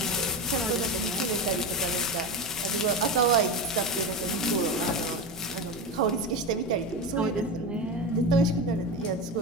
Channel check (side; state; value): both; normal; correlation 0.20